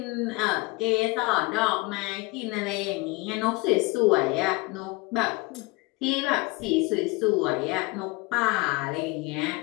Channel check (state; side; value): quieter; right; 24.5 dB